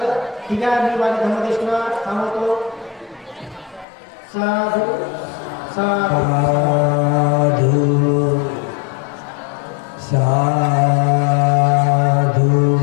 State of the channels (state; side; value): drops out; right; at 3.9 s